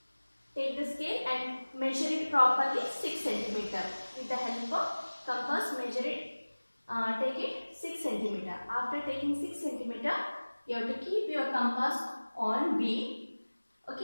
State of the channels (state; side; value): inverted; both; correlation -1.00